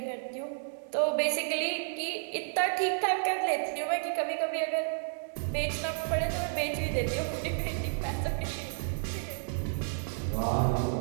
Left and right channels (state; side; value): silent; left; digital silence